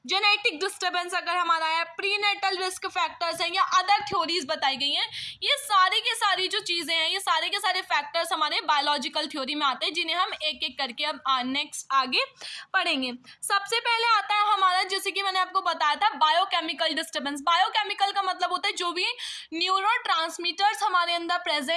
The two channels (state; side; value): identical; both; correlation 1.00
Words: जेनेटिक डिस्टर्बेंस अगर हमारा है, प्रीनेटल रिस्क फैक्टर्स हैं, या अदर थ्योरीज बताई गई हैं, ये सारी के सारी जो चीज़ें हैं, ये सारे के सारे फैक्टर्स हमारे बायोलॉजिकल थ्योरी में आते हैं, जिन्हें हम एक एक करके अब नेक्स्ट आगे पढ़ेंगे। सबसे पहले आता है हमारा, जैसे कि मैंने आपको बताया था, बायोकेमिकल डिस्टर्बेंस। बायोकेमिकल का मतलब होता है जो भी न्यूरोट्रांसमीटर्स हमारे अंदर